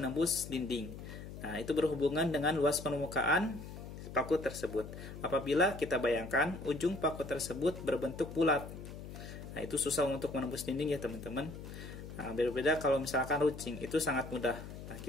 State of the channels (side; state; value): left; noise; hum, 11 dB below the sound